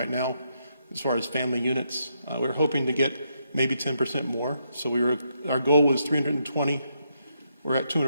now as far as family units. We're hoping to get maybe 10% more. So our goal was 320. We're at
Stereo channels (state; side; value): inverted; both; correlation -0.79